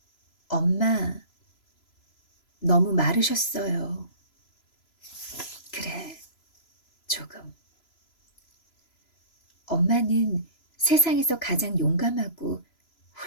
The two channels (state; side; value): late; right; 3.0 ms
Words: 엄마, 너무 마르셨어요. 그래, 조금. 엄마는 세상에서 가장 용감하고